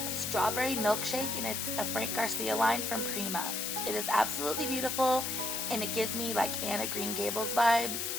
Strawberry Milkshake, and it's a Frank Garcia line from Prima. It is absolutely beautiful, and it gives me like Anna Green Gables vibes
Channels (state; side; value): noise; left; hiss, 2 dB below the sound